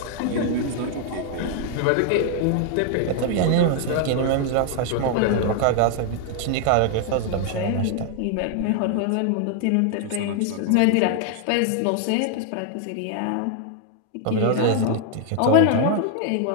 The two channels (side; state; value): both; different; correlation 0.00